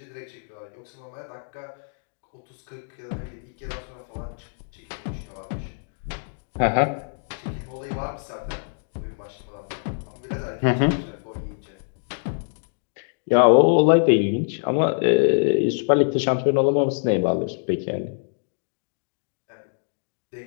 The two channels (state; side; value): silent; right; digital silence